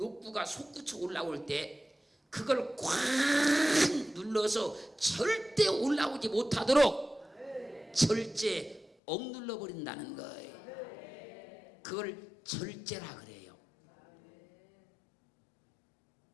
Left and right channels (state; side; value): drops out; right; at 8.9 s